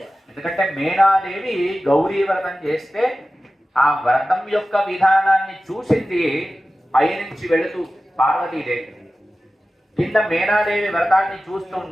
ఎందుకంటే మేనాదేవి గౌరీ వ్రతం చేస్తే ఆ వ్రతం యొక్క విధానాన్ని చూసింది పైనుంచి వెళుతూ పార్వతీదేవి. కింద మేనాదేవి వ్రతాన్ని చూస్తూ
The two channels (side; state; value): both; normal; correlation 0.95